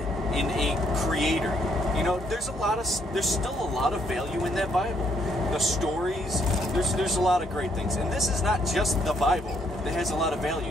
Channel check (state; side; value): normal; both; correlation 0.70